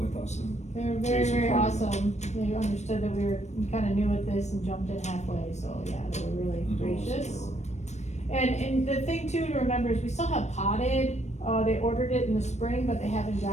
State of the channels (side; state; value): right; late; 0.33 ms